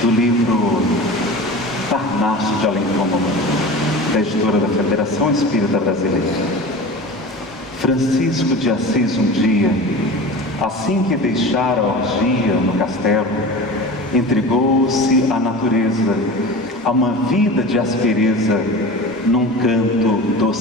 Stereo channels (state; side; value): normal; both; correlation 0.33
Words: do livro Parnaso de Além Túmulo, da editora da Federação Espírita Brasileira. Francisco de Assis um dia, assim que deixara a orgia no castelo, entregou-se à natureza, a uma vida de aspereza, num canto